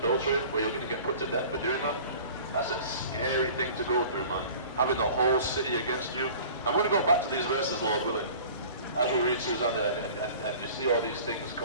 where you're going to get put to death for doing that, that's a scary thing to go through, man. Having the whole city against you. I'm going to go back to these verses, Lord willing, as we read Susanna, and you see all these things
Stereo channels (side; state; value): both; inverted; correlation -0.44